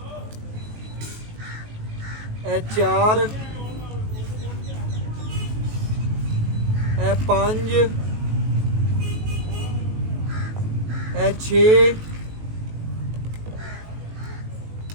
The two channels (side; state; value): left; late; 19 ms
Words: ਇਹ ਚਾਰ, ਇਹ ਪੰਜ, ਇਹ ਛੇ,